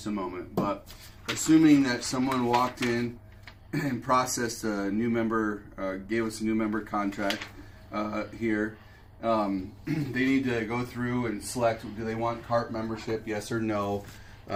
a moment. But assuming that someone walked in and processed a new member, gave us a new member contract here, they need to go through and select, do they want cart membership, yes or no.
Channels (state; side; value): identical; both; correlation 1.00